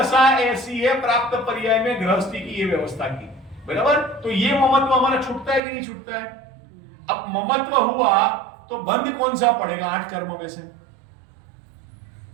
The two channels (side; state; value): left; drops out; at 5.6 s